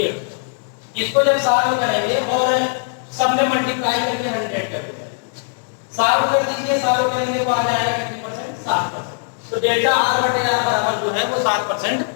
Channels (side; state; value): right; silent; digital silence